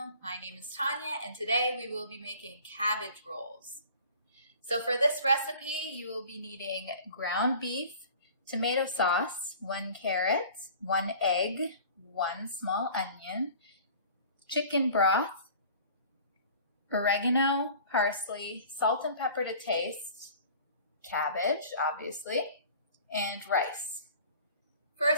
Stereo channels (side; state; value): both; inverted; correlation -0.46